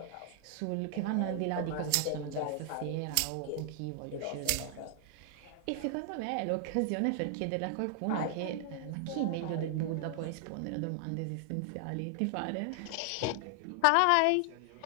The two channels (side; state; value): both; different; correlation 0.00